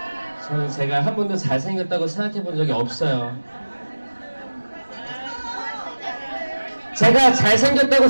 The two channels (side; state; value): both; inverted; correlation -1.00